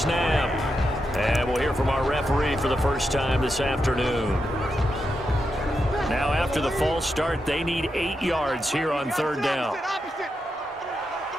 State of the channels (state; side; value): normal; both; correlation 0.86